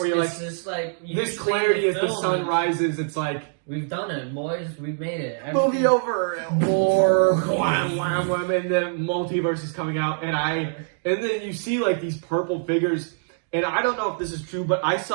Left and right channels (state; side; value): silent; left; digital silence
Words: you're like, just like this clarity as the sun rises. It's like we've done it, boys. We've made it. Movie over. More wham, wham, wham, and the multiverse is coming out, and then you see like these purple figures, and I don't know if this is true, but I